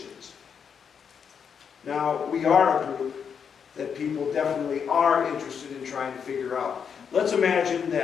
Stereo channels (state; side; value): quieter; right; 7.0 dB